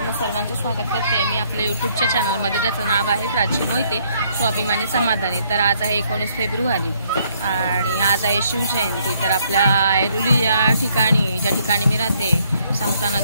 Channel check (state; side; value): inverted; both; correlation -0.68